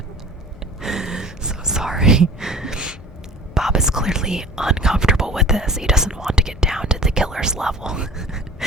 So sorry. Bob is clearly uncomfortable with this. He doesn't want to get down to the killer's level.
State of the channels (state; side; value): normal; both; correlation 0.43